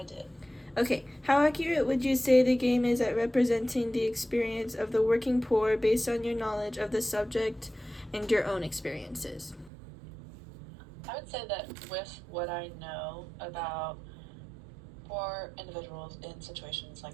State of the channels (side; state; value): left; drops out; at 9.7 s